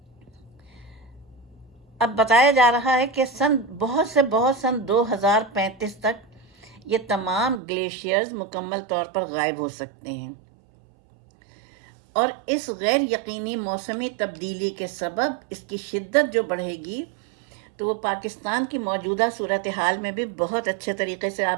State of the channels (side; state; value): left; drops out; at 7.6 s